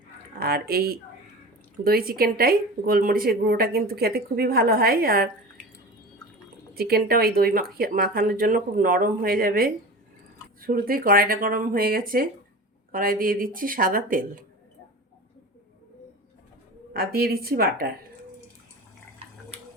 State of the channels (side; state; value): both; normal; correlation 0.33